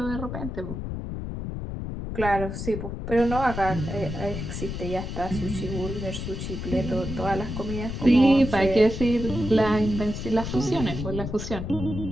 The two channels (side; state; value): left; noise; rumble, 6 dB below the sound